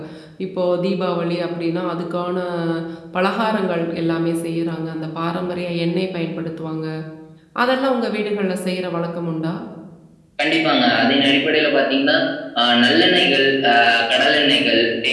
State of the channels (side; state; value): both; identical; correlation 1.00